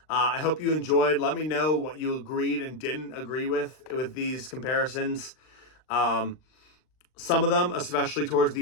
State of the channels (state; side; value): late; right; 39 ms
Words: I hope you enjoyed. Let me know what you agreed and didn't agree with these comparisons. Some of them, especially towards